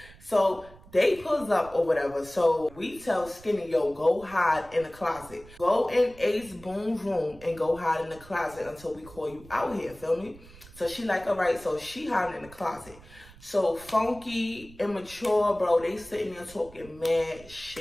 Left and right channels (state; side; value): noise; right; rumble, 21 dB below the sound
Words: So they pulls up or whatever. So we tell Skinny, yo, go hide in the closet. Go in Ace Boom's room and go hide in the closet until we call you out here, feel me? So she like, all right, so she hiding in the closet. So Funky, Immature, bro, they sitting there talking mad